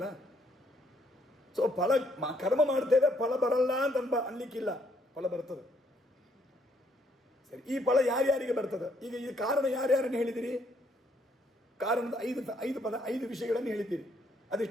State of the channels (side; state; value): both; normal; correlation 0.69